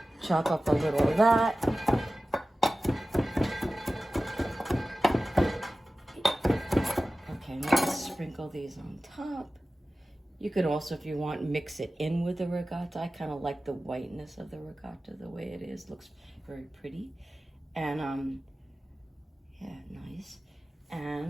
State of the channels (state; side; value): normal; both; correlation 0.95